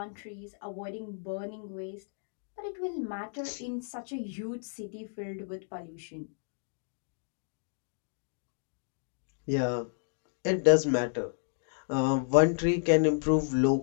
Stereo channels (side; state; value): right; silent; digital silence